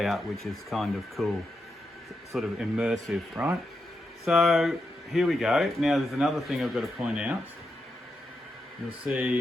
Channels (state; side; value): normal; both; correlation 0.86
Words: which is kind of cool, sort of immersive, right? So here we go. Now there's another thing I've got to point out. You'll